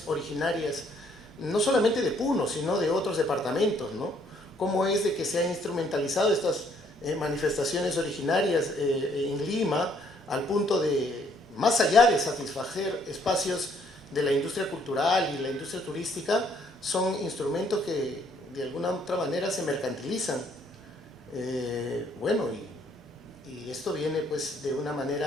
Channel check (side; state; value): both; normal; correlation 0.66